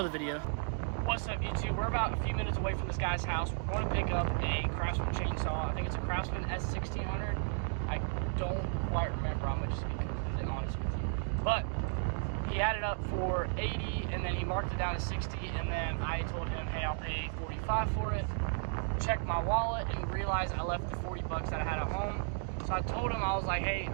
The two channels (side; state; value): left; silent; 55 dB below the other